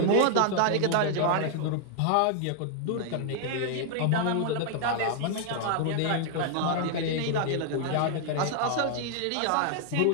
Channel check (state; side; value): different; both; correlation 0.00